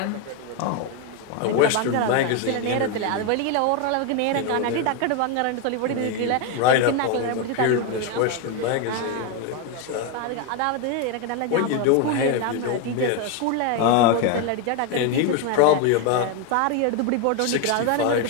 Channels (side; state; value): both; different; correlation 0.02